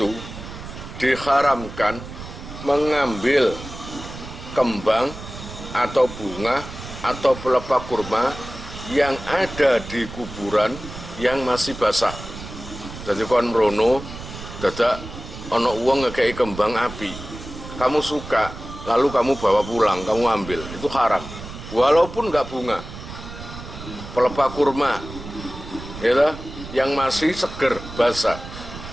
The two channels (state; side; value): noise; right; rumble, 12 dB below the sound